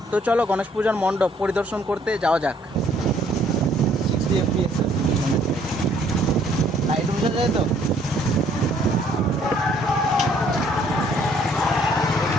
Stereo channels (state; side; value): normal; both; correlation 0.63